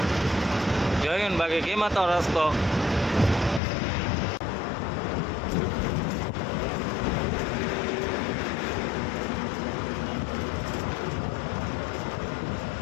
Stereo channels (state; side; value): drops out; right; at 3.6 s